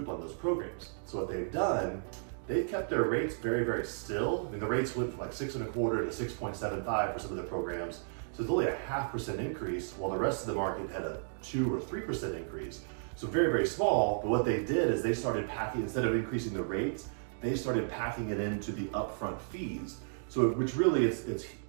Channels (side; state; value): left; silent; digital silence